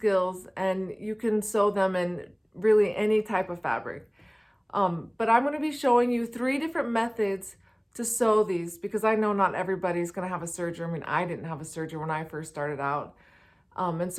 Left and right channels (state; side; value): identical; both; correlation 1.00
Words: and you can sew them in really any type of fabric. But I'm going to be showing you 3 different methods to sew these because I know not everybody's going to have a serger. I mean, I didn't have a serger when I first started out. And